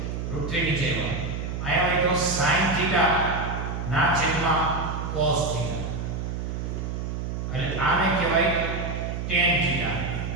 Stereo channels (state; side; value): noise; right; hum, 4 dB below the sound